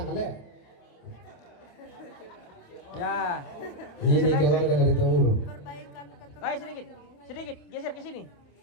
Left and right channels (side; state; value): right; late; 28 ms